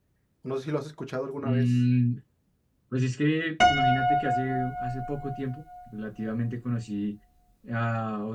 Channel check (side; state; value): both; identical; correlation 1.00